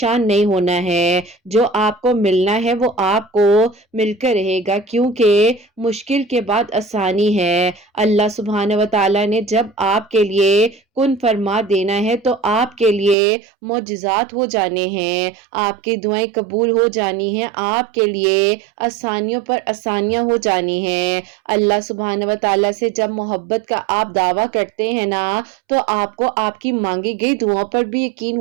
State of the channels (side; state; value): left; drops out; at 13.2 s